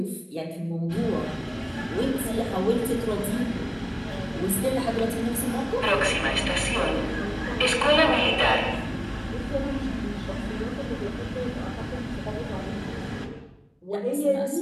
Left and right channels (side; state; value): both; identical; correlation 1.00